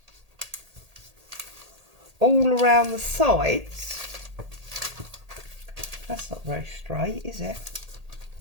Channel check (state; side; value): late; left; 1.8 ms